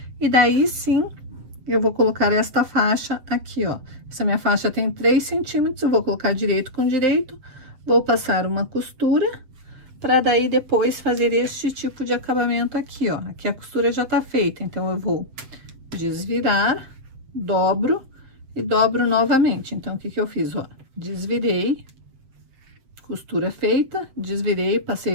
e daí sim eu vou colocar esta faixa aqui, ó. Essa minha faixa tem 3 centímetros, eu vou colocar direito com direito, vou passar uma costura, para daí depois fazer este tipo de acabamento aqui, ó. Aqui a costura já tá feita, então eu vou desvirar, dobro e dobro novamente. Então, o que que eu fiz, ó? Desvirei, costura feita, desvirei,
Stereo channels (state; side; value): late; left; 7.6 ms